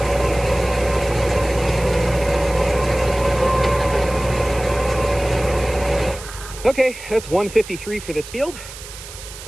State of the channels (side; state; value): right; noise; hiss, 14 dB below the sound